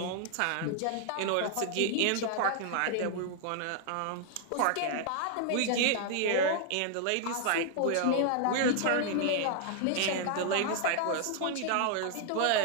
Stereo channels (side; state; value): both; different; correlation 0.00